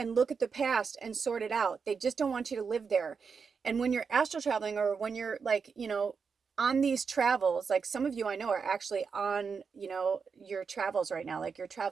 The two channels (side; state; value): left; quieter; 5.6 dB